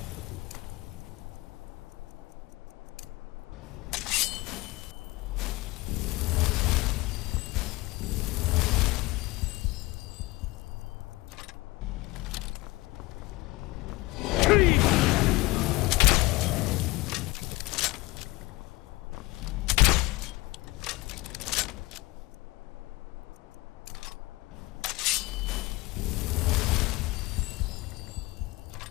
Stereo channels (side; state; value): right; quieter; 21.2 dB